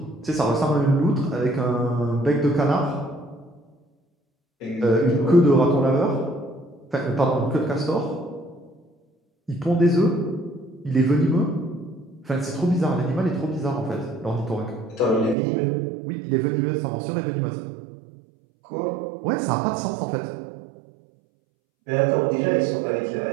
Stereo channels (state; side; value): drops out; left; at 15.4 s